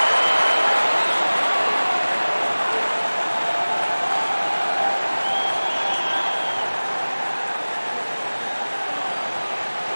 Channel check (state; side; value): inverted; both; correlation -1.00